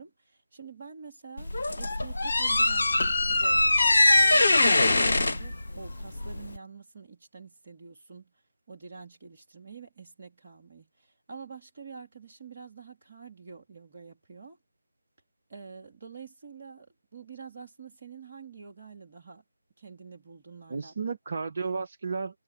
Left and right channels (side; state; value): both; inverted; correlation -0.94